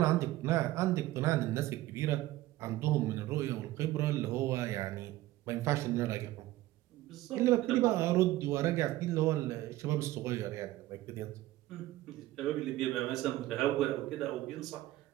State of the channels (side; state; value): left; quieter; 16.3 dB